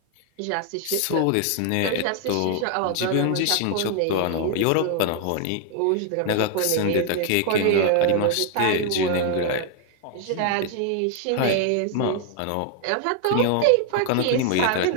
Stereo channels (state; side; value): different; both; correlation 0.00